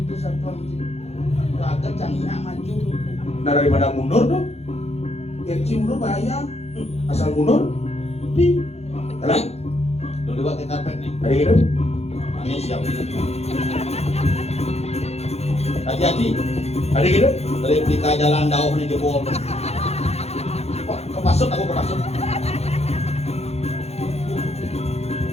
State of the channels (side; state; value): right; late; 0.31 ms